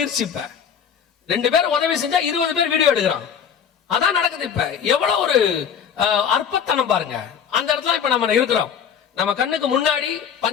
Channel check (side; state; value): right; quieter; 7.8 dB